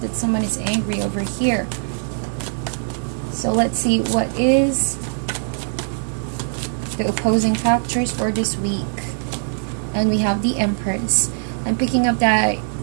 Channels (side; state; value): left; silent; 61 dB below the other